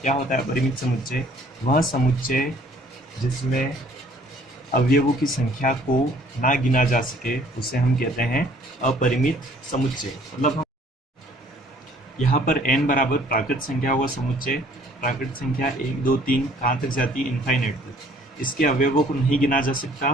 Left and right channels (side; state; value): both; normal; correlation 0.57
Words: क्या होता है अपरिमित समुच्चय, वह समुच्चय जिसमें अवयवों की संख्या को ना गिना जा सके उसे हम कहते हैं अपरिमित समुच्चय। मतलब हम यहाँ पर n बराबर प्राकृत संख्या होगा समुच्चय। प्राकृत संख्या 1, 2, 3 कहाँ तक जाती है, इनफाइनाइट तक। इसके अवयवों को नहीं गिना जा सकता,